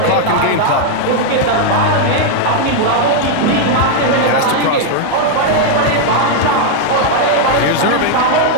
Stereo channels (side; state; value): both; different; correlation 0.00